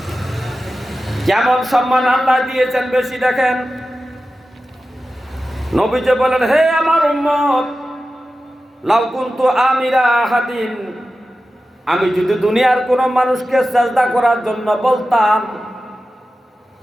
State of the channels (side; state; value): both; normal; correlation 0.93